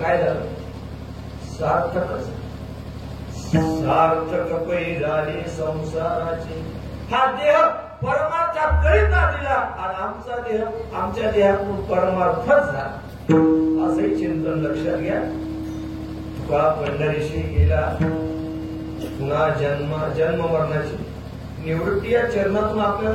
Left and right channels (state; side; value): identical; both; correlation 1.00